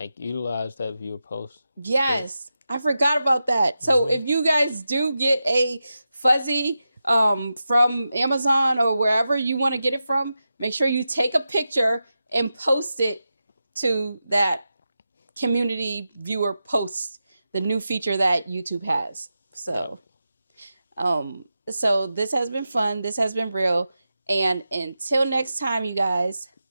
utilize that viewer post. Yes. I forgot about that. So if you guys do get a fuzzy from Amazon or wherever you want to get it from, make sure you take a picture and post it to that community viewer post, the new feature that YouTube has. So, so this has been fun. This has been real. And until next time, you guys,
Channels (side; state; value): both; inverted; correlation -0.91